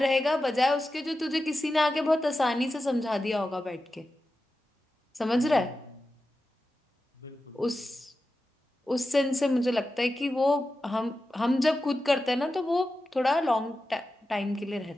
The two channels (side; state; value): both; normal; correlation 0.92